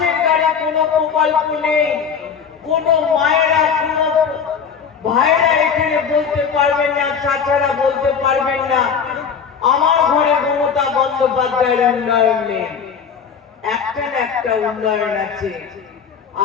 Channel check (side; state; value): right; quieter; 6.7 dB